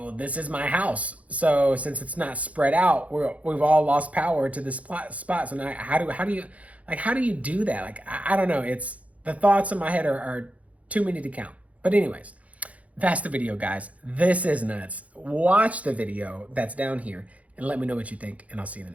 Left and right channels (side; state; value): left; late; 0.067 ms